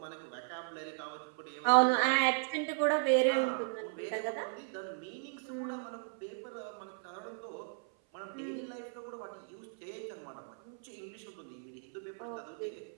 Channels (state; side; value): silent; left; 54 dB below the other